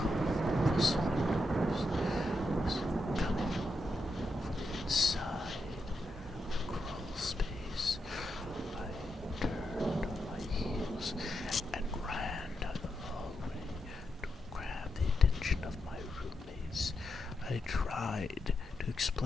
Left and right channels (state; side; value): normal; both; correlation 0.84